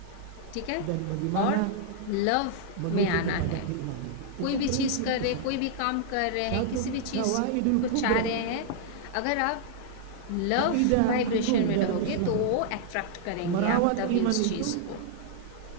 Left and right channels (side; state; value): both; different; correlation -0.01